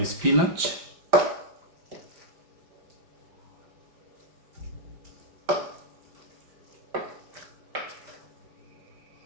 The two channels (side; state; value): left; late; 5.0 ms